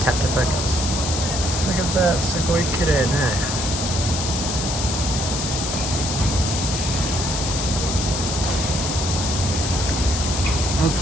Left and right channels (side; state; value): left; noise; hiss, 3 dB below the sound